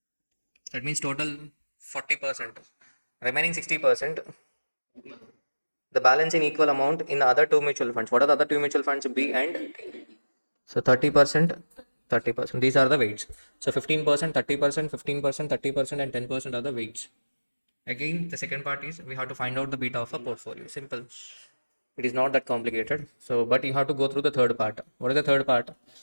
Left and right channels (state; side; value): inverted; both; correlation -1.00